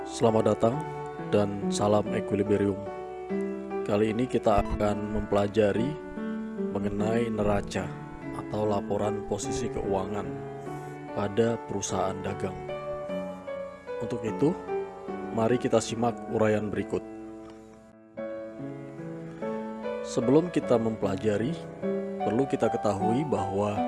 Selamat datang dan salam equilibrium. Kali ini kita akan mempelajari mengenai neraca atau laporan posisi keuangan pada perusahaan dagang. Untuk itu, mari kita simak uraian berikut. Sebelum kita mempelajari, perlu kita ketahui bahwa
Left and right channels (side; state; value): both; identical; correlation 1.00